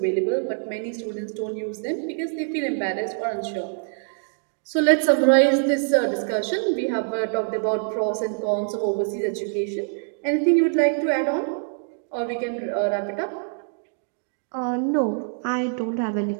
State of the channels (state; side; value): silent; left; digital silence